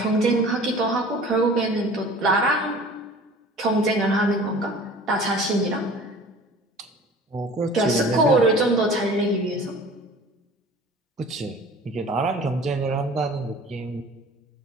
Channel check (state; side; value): normal; both; correlation 0.44